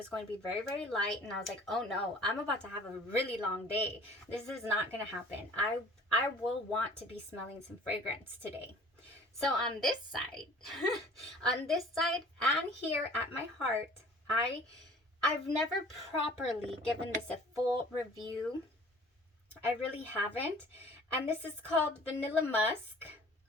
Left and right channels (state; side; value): normal; both; correlation 0.49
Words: going to be very, very light, and I was like, oh no, I'm about to have a really long day. This is not going to happen. I will want to be smelling some fragrance today. So on this side, on this side and here at my heart, I've never properly given this a full review. I really haven't. And this is called Vanilla Musk,